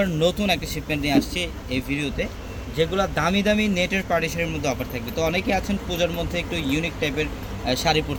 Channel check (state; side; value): identical; both; correlation 1.00